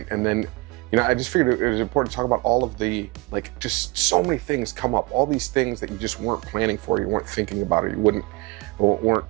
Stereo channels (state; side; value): quieter; left; 25.3 dB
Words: And then, I just figured it was important to talk about all of the, just so many things come up, all these things that you just weren't planning for, you weren't thinking about it, you